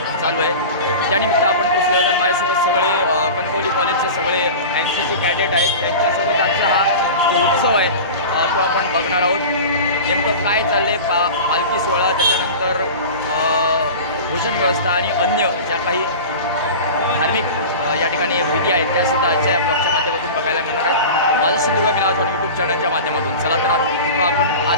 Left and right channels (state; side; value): inverted; both; correlation -0.32